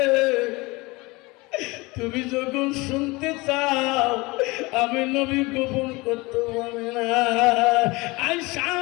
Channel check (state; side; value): quieter; right; 23.6 dB